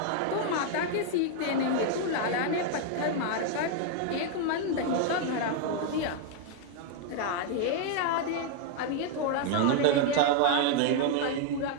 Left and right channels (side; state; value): both; different; correlation 0.00